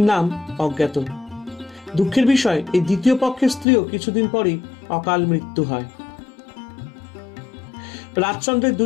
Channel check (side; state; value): right; drops out; at 3.7 s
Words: নাম অজ্ঞাত। দুঃখের বিষয়, এই দ্বিতীয় পক্ষের স্ত্রীও কিছুদিন পরই অকাল মৃত্যু হয়। রাজচন্দ্রের